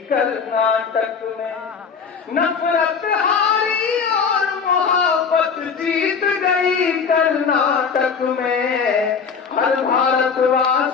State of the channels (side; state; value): right; quieter; 5.9 dB